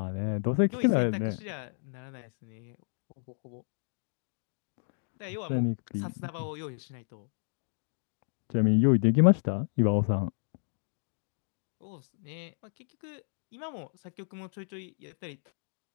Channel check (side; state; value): right; silent; digital silence